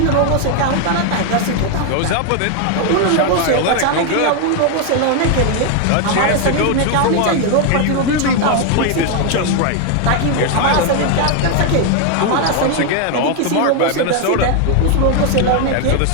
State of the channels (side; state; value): both; different; correlation 0.01